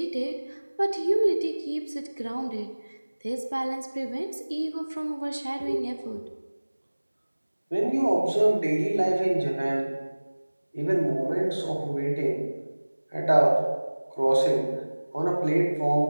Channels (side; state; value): both; inverted; correlation -1.00